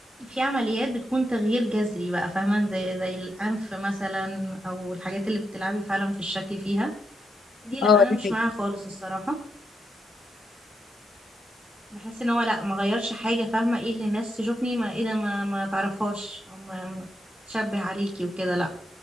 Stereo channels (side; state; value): both; normal; correlation 0.83